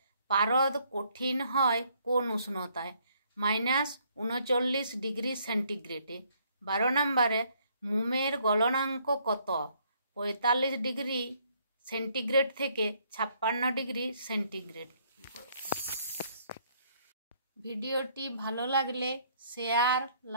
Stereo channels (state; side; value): inverted; both; correlation -0.66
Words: পারদ কঠিন হয় কোন উষ্ণতায়? -39 ডিগ্রি সেন্টিগ্রেডে। 12 নম্বরে, মোমের গলনাঙ্ক কত? 45 ডিগ্রি সেন্টিগ্রেড থেকে 56 ডিগ্রি সেন্টিগ্রেড। ভিডিওটি ভালো লাগলে শেয়ার,